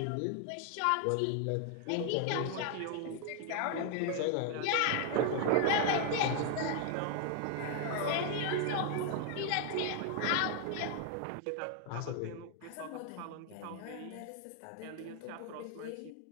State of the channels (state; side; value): different; both; correlation 0.00